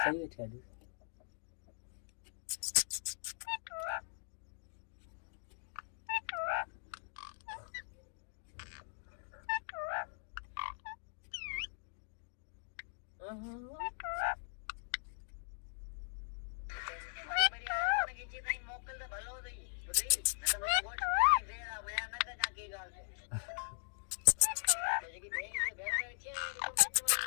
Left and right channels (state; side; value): silent; right; digital silence